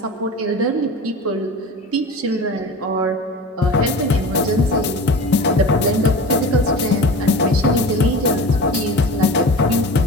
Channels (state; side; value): normal; both; correlation 0.34